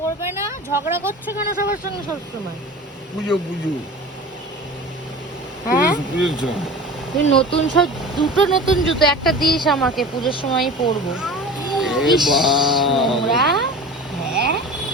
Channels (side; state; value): both; normal; correlation 0.36